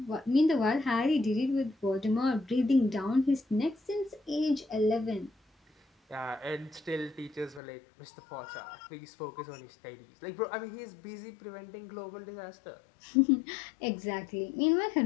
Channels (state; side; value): drops out; right; at 7.6 s